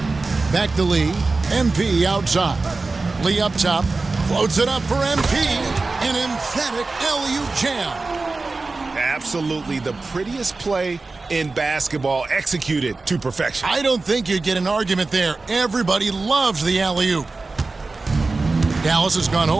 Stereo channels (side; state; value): left; quieter; 3.7 dB